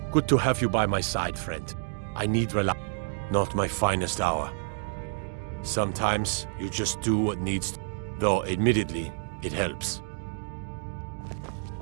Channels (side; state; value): left; silent; digital silence